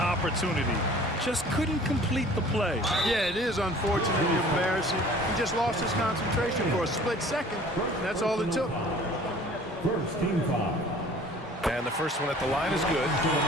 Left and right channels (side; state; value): both; normal; correlation 0.49